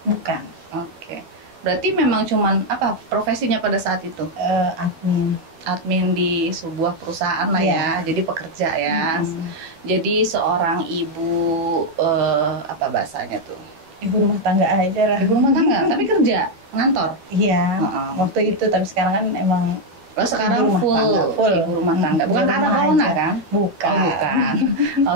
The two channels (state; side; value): late; left; 12 ms